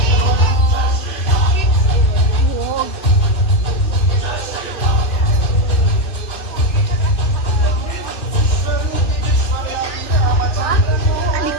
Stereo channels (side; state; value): right; late; 2.5 ms